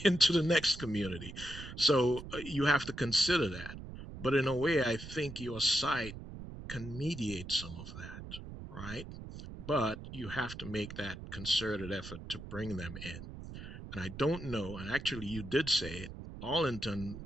into the next community, so you have to consider that. But in a way, I think your site can mediate some of that, right? But you have to make that concerted effort to bring them in. And I don't know, and actually you did say it, Arlington,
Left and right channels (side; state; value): right; noise; rumble, 11 dB below the sound